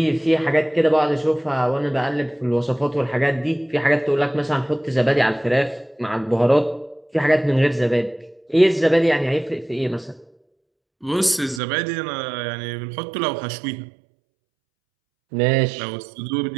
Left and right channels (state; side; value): drops out; left; at 11.6 s